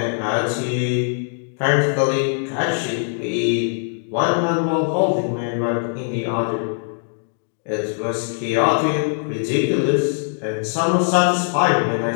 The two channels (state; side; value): silent; right; digital silence